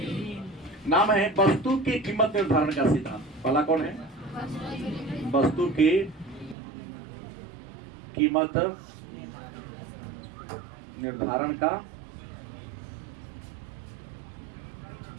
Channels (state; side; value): drops out; left; at 6.6 s